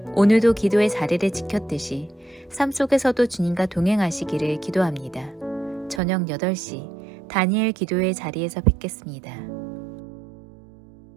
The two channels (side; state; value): left; drops out; at 6.0 s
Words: 오늘도 기도의 자리를 지켰듯이 삶 속에서도 주님과 동행하시기를 기도합니다. 저녁 8시 다니엘 기도의 자리에서 뵙겠습니다.